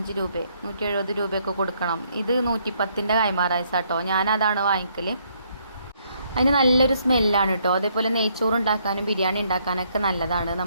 രൂപ 170 രൂപയൊക്കെ കൊടുക്കണം. ഇത് 110ൻ്റെ കൈമാ റൈസ് കേട്ടോ. ഞാനതാണ് വാങ്ങിക്കൽ. അതിന് നല്ലൊരു സ്മെല്ലാണ് കേട്ടോ. അതേപോലെ നെയ്ച്ചോറ് ഉണ്ടാക്കാനും ബിരിയാണി ഉണ്ടാക്കാനൊക്കെ നല്ലതാണ്.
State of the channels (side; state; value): both; inverted; correlation -0.70